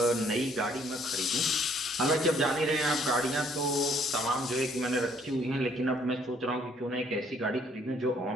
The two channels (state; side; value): normal; both; correlation 0.63